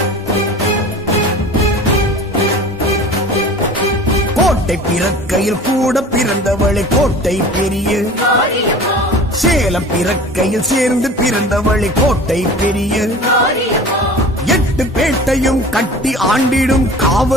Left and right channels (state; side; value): normal; both; correlation 0.41